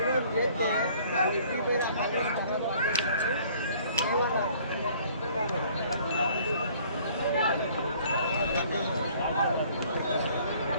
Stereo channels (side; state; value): both; inverted; correlation -0.56